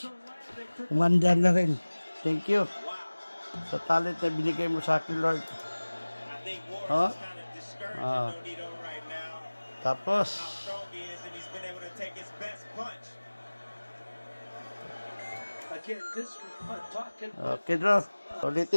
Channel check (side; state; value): both; inverted; correlation -1.00